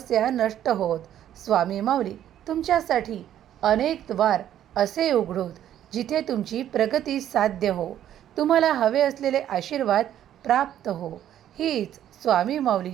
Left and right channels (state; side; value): quieter; left; 11.1 dB